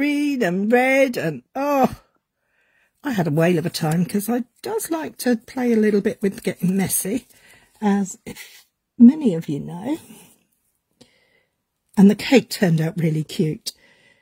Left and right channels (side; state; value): both; identical; correlation 1.00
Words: and red, and oh, I had a whale of a time, because I does like to play a little bit with getting messy, as if many of you know. And the cake turned out really cute,